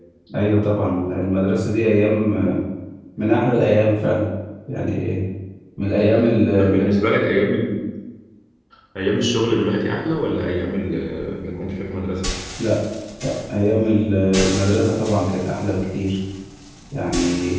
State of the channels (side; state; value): both; identical; correlation 1.00